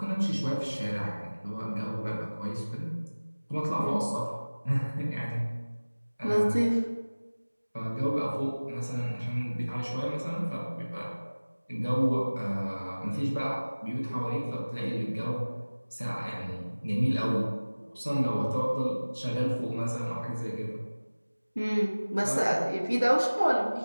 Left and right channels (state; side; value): inverted; both; correlation -1.00